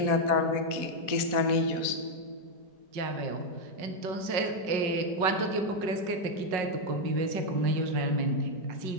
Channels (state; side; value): late; left; 5.4 ms